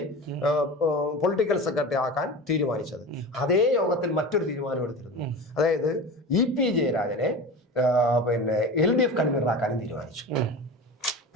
പൊളിറ്റിക്കൽ സെക്രട്ടറി ആക്കാൻ തീരുമാനിച്ചത്. അതേ യോഗത്തിൽ മറ്റൊരു തീരുമാനം എടുത്തിരുന്നു. അതായത് EP ജയരാജനെ പിന്നെ LDF കൺവീനറാക്കാനും തീരുമാനിച്ചു.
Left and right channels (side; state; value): both; normal; correlation 0.31